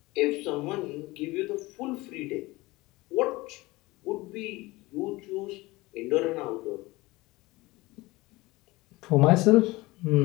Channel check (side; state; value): right; quieter; 21.1 dB